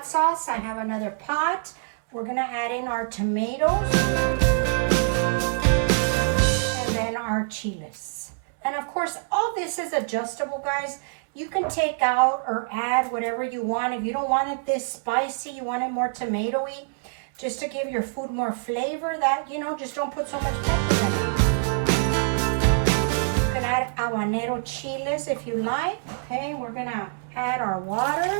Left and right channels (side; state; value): left; silent; digital silence